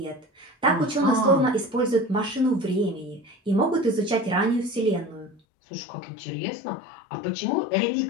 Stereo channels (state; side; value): drops out; right; at 5.4 s